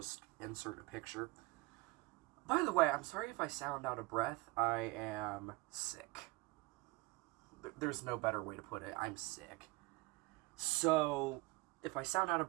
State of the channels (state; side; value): quieter; left; 22.7 dB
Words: insert a picture. By the way, I'm sorry if I sound out of breath. I am sick. There's no better way to put it. I'm sick. So, if I sound out of